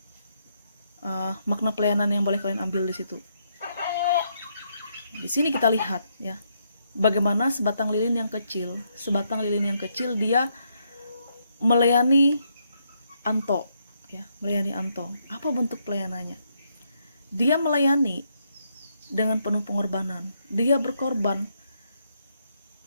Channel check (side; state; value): both; inverted; correlation -0.76